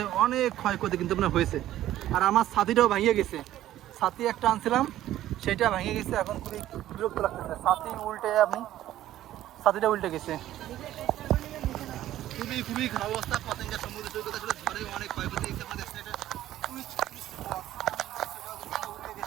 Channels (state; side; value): quieter; left; 13.4 dB